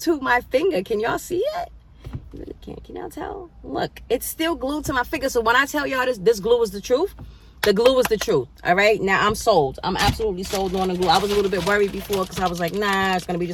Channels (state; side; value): identical; both; correlation 1.00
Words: to my finger. Can y'all see it? You really can't. Can y'all tell? Look, it's still glued to my finger. So when I tell y'all this glue is the truth, the glue is the truth. All right? Now I'm sold. I'm absolutely sold on the glue. I was a little bit worried before because I was like, nah, it's going to be